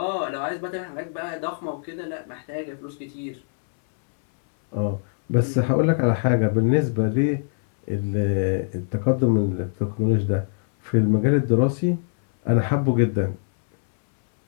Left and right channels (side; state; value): right; silent; 63 dB below the other